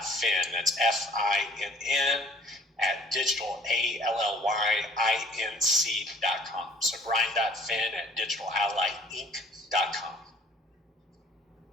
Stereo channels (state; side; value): normal; both; correlation 0.54